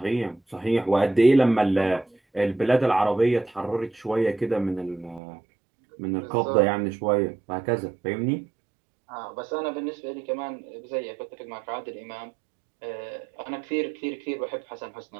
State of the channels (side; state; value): left; drops out; at 5.2 s